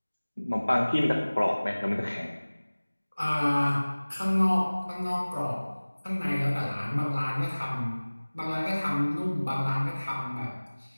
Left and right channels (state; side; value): inverted; both; correlation -1.00